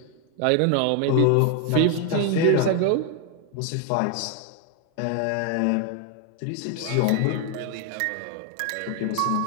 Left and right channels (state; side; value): different; both; correlation 0.01